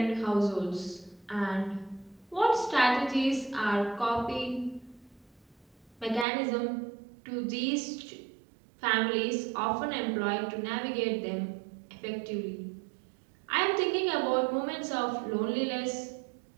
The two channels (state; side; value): drops out; left; at 6.2 s